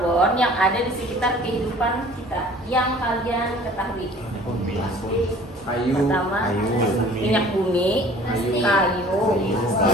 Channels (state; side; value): normal; both; correlation 0.49